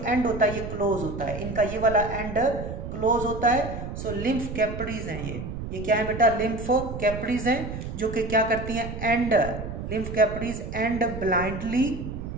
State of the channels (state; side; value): noise; right; rumble, 7 dB below the sound